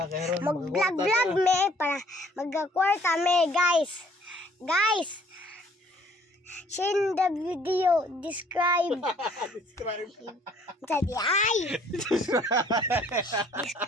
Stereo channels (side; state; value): both; normal; correlation 0.59